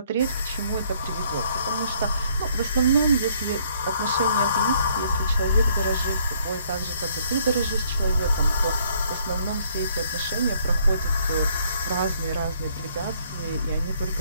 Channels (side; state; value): both; inverted; correlation -0.65